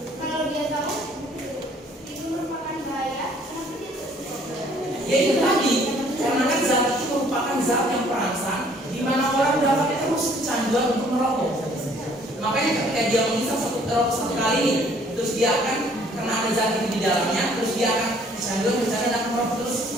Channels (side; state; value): both; normal; correlation 0.59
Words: kalau dia tahu itu merupakan bahaya, kenapa dia terus? Ya itu tadi, karena kan zat itu merupakan zat yang perangsang, di mana orang dapat terus kecanduan untuk merokok. Makanya ketika dia menghisap satu kali ini, terus dia akan karena ada zat itu di dalamnya, terus dia akan kecanduan dan merokok terus